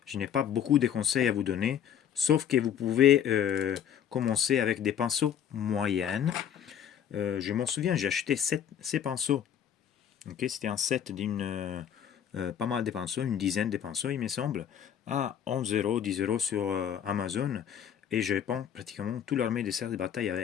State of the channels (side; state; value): right; quieter; 9.1 dB